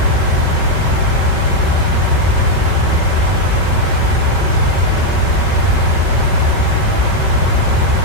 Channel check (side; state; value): right; late; 5.3 ms